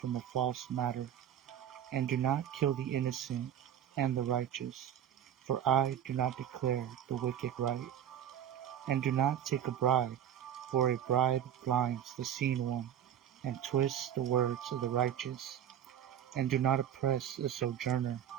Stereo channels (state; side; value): quieter; left; 9.9 dB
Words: a false matter, and do not kill the innocent and the righteous, for I do not declare the wicked right. And do not take a bribe, for a bribe blinds the seen one, and twists the words of the righteous. And do not oppress a sojourner,